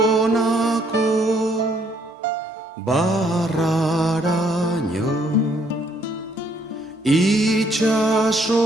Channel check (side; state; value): both; normal; correlation 0.67